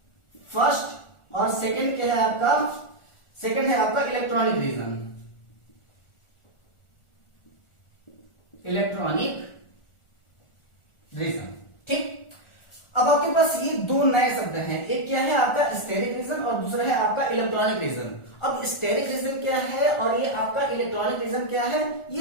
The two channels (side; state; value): right; late; 1.4 ms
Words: फर्स्ट, और सेकंड क्या है आपका, सेकंड है आपका इलेक्ट्रॉनिक रीजन। इलेक्ट्रॉनिक रीजन, ठीक। अब आपके पास ये दो नए शब्द हैं, एक क्या है आपका स्टेरिक रीजन और दूसरा है आपका इलेक्ट्रॉनिक रीजन। अब स्टेरिक रीजन क्या है और ये आपका इलेक्ट्रॉनिक रीजन क्या है,